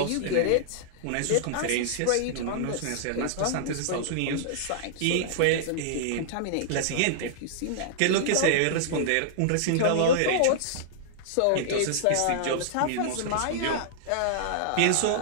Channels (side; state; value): both; different; correlation -0.01